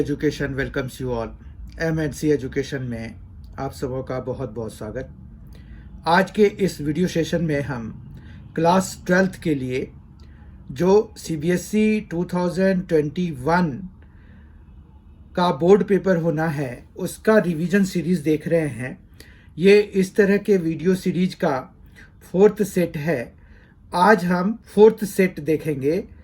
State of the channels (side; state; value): both; identical; correlation 1.00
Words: welcomes you all. MNC education में आप सबों का बहुत बहुत स्वागत। आज के इस वीडियो सेशन में हम क्लास 12th के लिए जो CBSE 2021 का बोर्ड पेपर होना है उसका रिवीजन सीरीज़ देख रहे हैं। ये इस तरह के वीडियो सीरीज का 4th सेट है। आज हम 4th सेट देखेंगे,